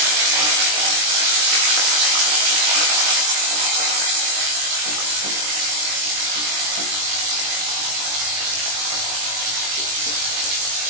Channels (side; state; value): left; late; 20 ms